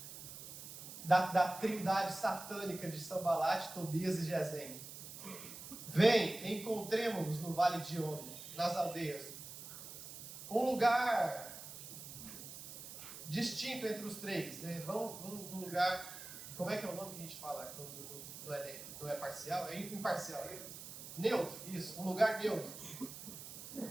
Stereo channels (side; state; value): right; noise; hiss, 11 dB below the sound